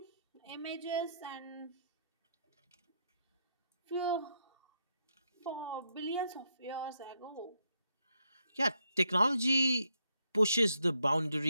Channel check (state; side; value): inverted; both; correlation -0.78